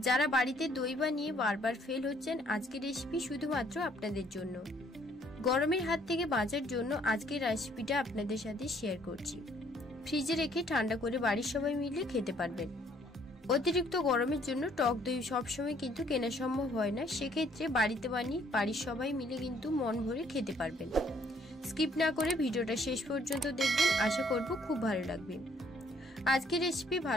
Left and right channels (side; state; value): both; normal; correlation 0.63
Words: যারা বাড়িতে দই বানিয়ে বারবার ফেল হচ্ছেন, আজকের রেসিপি শুধুমাত্র আপনাদের জন্য। গরমের হাত থেকে বাঁচার জন্য আজকের রেসিপিটা আপনাদের সাথে শেয়ার করছি। ফ্রিজে রেখে ঠান্ডা করে বাড়ির সবাই মিলে খেতে পারবেন। অতিরিক্ত গরমের জন্য টক দই সবসময় কিন্তু কেনা সম্ভব হয় না, সেক্ষেত্রে বাড়িতে বানিয়ে বাড়ির সবাই মিলে কিন্তু মন ভরে খেতে পারবেন। স্কিপ না করে ভিডিওটা শেষ পর্যন্ত দেখবেন, আশা করব খুব ভালো লাগবে। আজকের রেসিপি